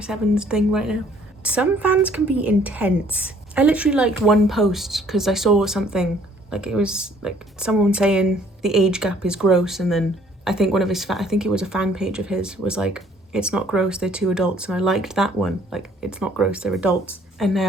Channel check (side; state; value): both; normal; correlation 0.60